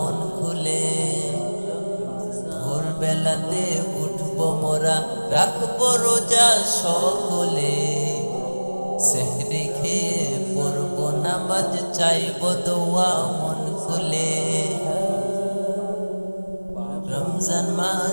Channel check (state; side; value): inverted; both; correlation -1.00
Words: খুলে। ভোরবেলাতে উঠবো মোরা, রাখবো রোজা সকলে, সেহরি খেয়ে পড়বো নামাজ, চাইবো দোয়া মন খুলে। রমজান